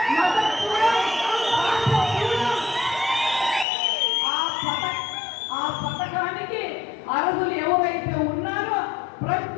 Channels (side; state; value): right; drops out; at 3.7 s